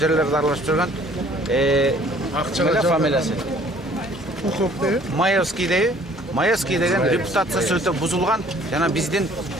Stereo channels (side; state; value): both; normal; correlation 0.56